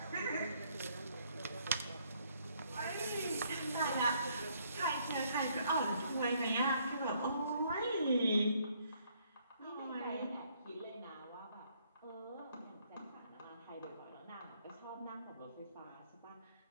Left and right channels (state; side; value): inverted; both; correlation -0.68